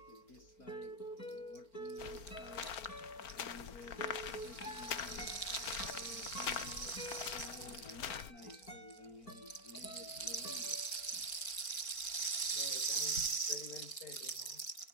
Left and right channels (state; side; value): late; right; 4.4 ms